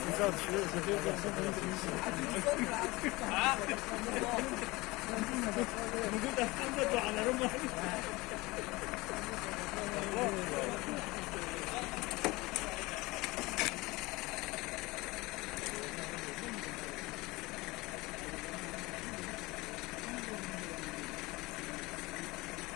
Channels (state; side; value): quieter; right; 22.2 dB